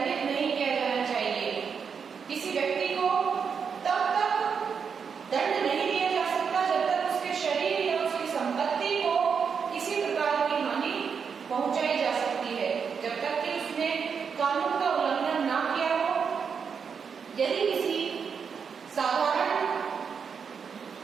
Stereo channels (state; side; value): quieter; left; 6.3 dB